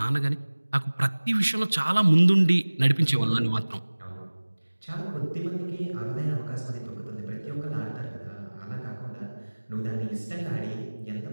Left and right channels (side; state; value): both; inverted; correlation -1.00